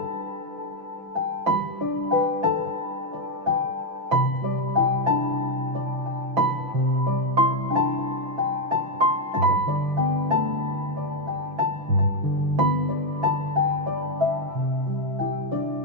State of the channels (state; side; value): late; left; 5.9 ms